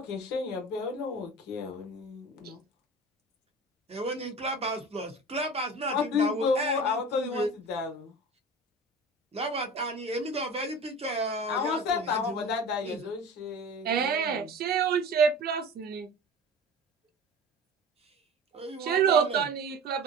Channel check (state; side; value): normal; both; correlation 0.36